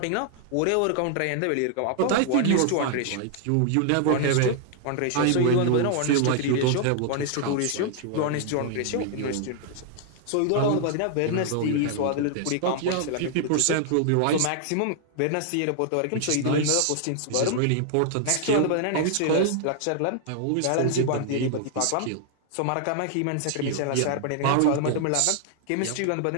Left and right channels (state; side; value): different; both; correlation 0.00